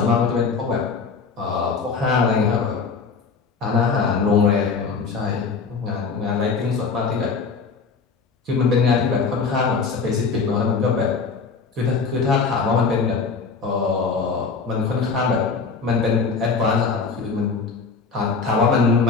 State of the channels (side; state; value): right; quieter; 5.0 dB